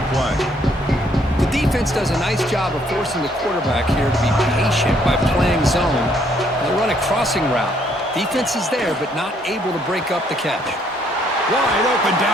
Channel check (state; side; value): normal; both; correlation 0.67